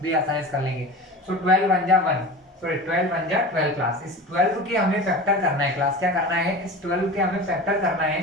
भी आसानी से कर लेंगे। सो 12 1 जा 1, सॉरी 12 1 जा 12 क्लास। इस 12 के हमें फैक्टर करना है क्लास। क्या करना है? इस 12 के हमें फैक्टर करना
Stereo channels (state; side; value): normal; both; correlation 0.32